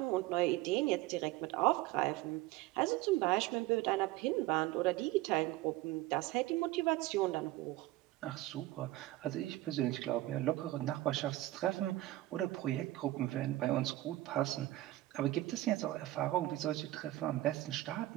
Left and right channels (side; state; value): left; quieter; 16.8 dB